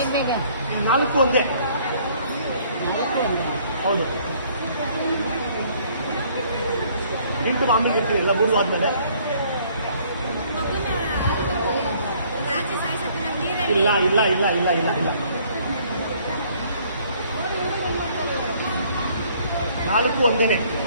4 ಒಂದೇ. ಹೌದು. ಇಂಟು ಆಮೇಲೆ ಇರ್ತೀನಿ ಇಲ್ಲ 3 ಆದ್ಮೇಲೆ. ಇಲ್ಲ ಇಲ್ಲ ಇಲ್ಲ ಇಲ್ಲ ಇಲ್ಲ ಇಲ್ಲ 4 ಒಂದೇನೆ.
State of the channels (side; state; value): both; inverted; correlation -0.61